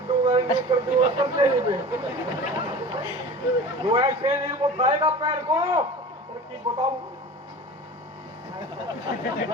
दूंगा समझे नहीं वो ऐसे नहीं उठाएगा पैर को और की बताऊं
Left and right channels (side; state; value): both; normal; correlation 0.37